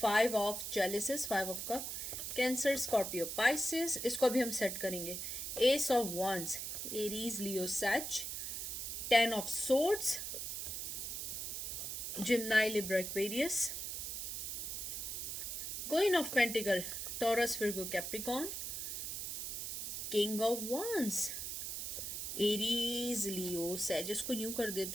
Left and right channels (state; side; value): noise; right; hiss, 4 dB below the sound